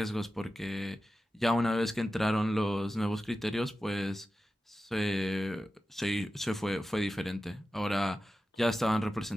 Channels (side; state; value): both; normal; correlation 0.93